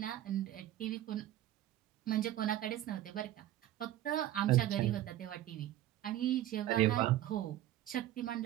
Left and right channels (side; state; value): left; quieter; 13.4 dB